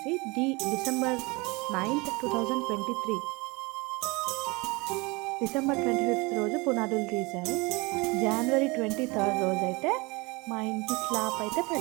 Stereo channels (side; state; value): left; quieter; 25.8 dB